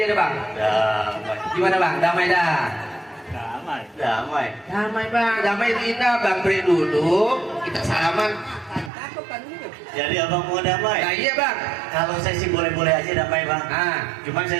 deh bang. damai, Gimana bang? Damai dah. damai. Damai bang. Damai itu indah bang. Beri duduk. Kita salaman. Jadi abang mau damai? Nah iya bang. Kalau saya sih boleh-boleh aja damai bang. Nah. Cuman saya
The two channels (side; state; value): left; drops out; at 8.9 s